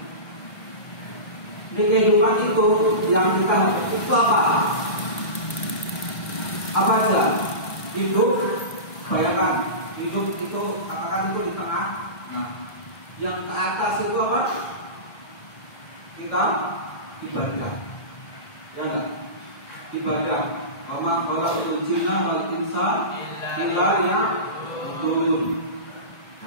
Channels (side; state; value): right; late; 1.7 ms